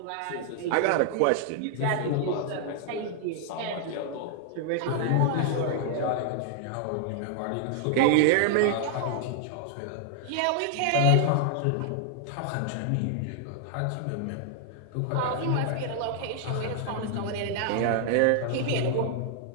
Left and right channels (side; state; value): both; different; correlation 0.00